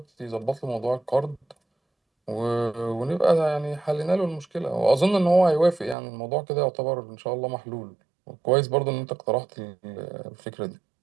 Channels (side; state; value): left; drops out; at 6.0 s